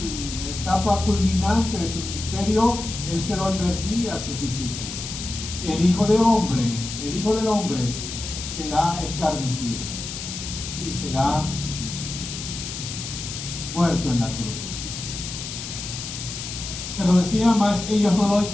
etapa culminante de su ministerio, él se lo advertía a sus discípulos. El Hijo del Hombre será escarnecido y será muerto en la cruz. Se lo decía, más ellos no lo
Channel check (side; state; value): left; noise; hiss, 7 dB below the sound